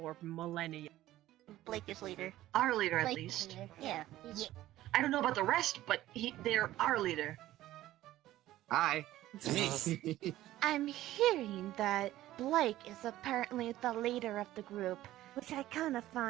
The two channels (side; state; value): left; quieter; 14.9 dB